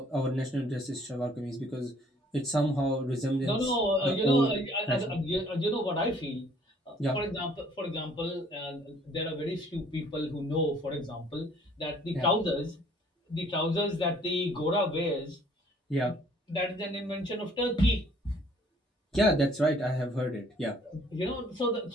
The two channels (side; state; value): both; normal; correlation 0.59